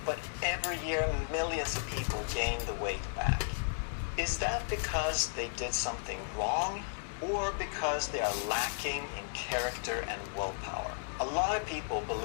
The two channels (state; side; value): silent; right; digital silence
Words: but every year, millions of people gain the weight back. Is that because they did something wrong, or because they are lacking in character and willpower? A lot of people